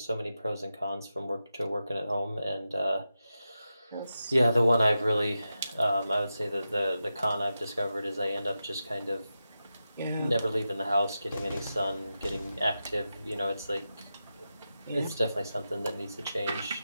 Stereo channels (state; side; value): inverted; both; correlation -0.90